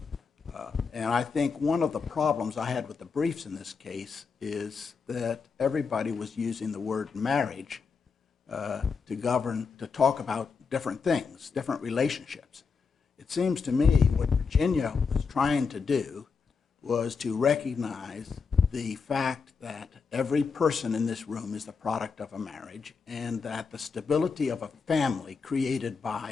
And I think one of the problems I had with the briefs in this case is that everybody was using the word marriage to talk about different things, different relationships. It seems to me what Virginia was trying to do was to recognize the fact that every person in this room is the product of a marriage, and that the stability of a family created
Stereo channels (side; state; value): right; quieter; 5.3 dB